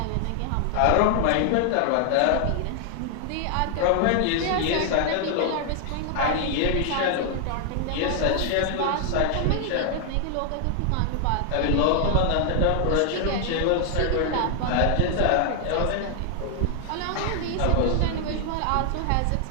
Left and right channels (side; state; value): both; different; correlation 0.00